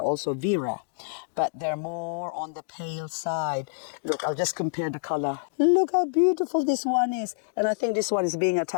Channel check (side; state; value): right; silent; digital silence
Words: Vera, but they're more on the pale side. Look, I'll just compare the color. Look how beautiful this one is. And I think this one is being